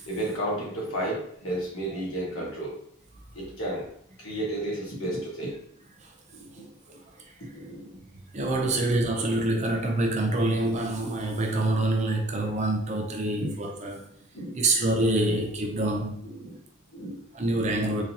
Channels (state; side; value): normal; both; correlation 0.51